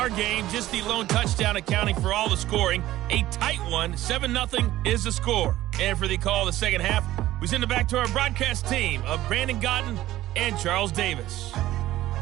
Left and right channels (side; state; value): left; quieter; 15.1 dB